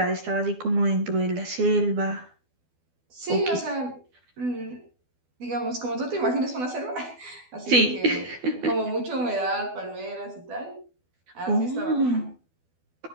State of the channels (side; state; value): left; late; 12 ms